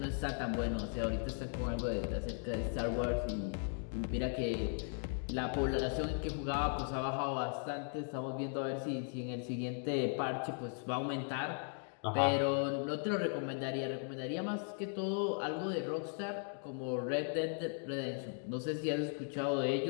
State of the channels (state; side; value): silent; right; 53 dB below the other